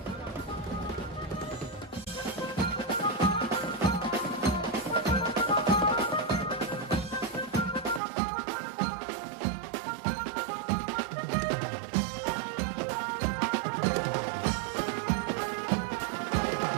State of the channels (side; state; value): left; drops out; at 8.0 s